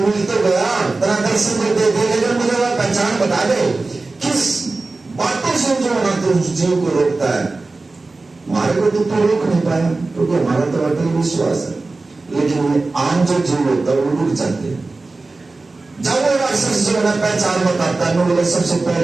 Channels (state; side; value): quieter; left; 3.5 dB